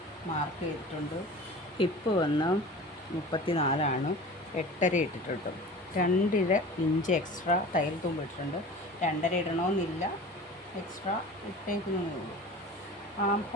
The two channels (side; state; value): both; normal; correlation 0.38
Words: മാർക്ക് ചെയ്തിട്ടുണ്ട്. ഹിപ്പ് വന്ന് 34 8.5 ഇട്ടിട്ടുണ്ട്. 2 ഇഞ്ച് എക്സ്ട്രാ തയ്യൽ തുമ്പ് ഇട്ടിട്ടുണ്ട്. 2.5 ഇടണമെന്നില്ല, എക്സ്ട്രാ ഇട്ടേക്കുന്നതേ ഉള്ളൂ. ആം